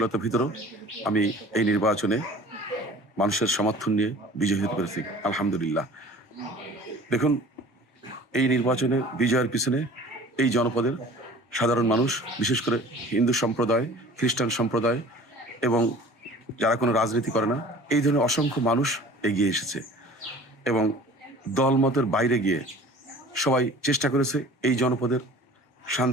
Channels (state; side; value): normal; both; correlation 0.45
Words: ভিতরেও আমি এই নির্বাচনে মানুষের সমর্থন নিয়ে বিজয়ী হতে পেরেছি, আলহামদুলিল্লাহ। দেখুন, এই নির্বাচনে বিজয়ের পিছনে এই জনপদের সাধারণ মানুষ, বিশেষ করে হিন্দু সম্প্রদায়, খ্রিস্টান সম্প্রদায় এবং যারা কোনো রাজনীতি করে না, এই ধরনের অসংখ্য মানুষ এগিয়ে এসেছে এবং দলমতের বাইরে গিয়ে সবাই চেষ্টা করেছে এই জনপদের